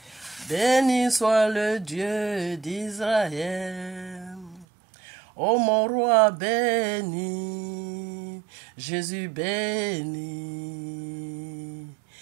Béni soit le Dieu d'Israël. Ô mon roi béni, Jésus béni.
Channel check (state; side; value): drops out; left; at 4.7 s